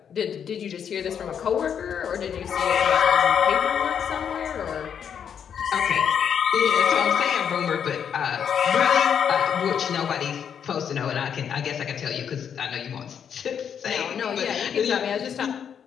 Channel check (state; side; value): quieter; right; 8.0 dB